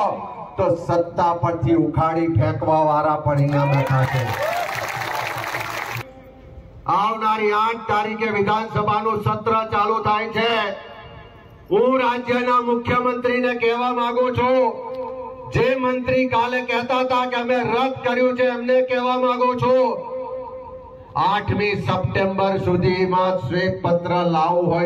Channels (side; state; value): both; identical; correlation 1.00